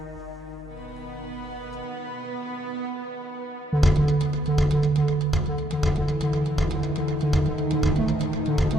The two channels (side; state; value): both; normal; correlation 0.74